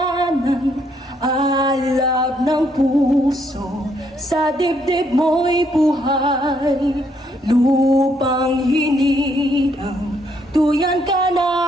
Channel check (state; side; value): normal; both; correlation 0.72